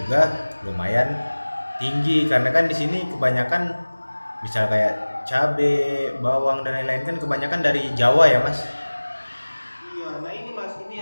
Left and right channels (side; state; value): both; inverted; correlation -1.00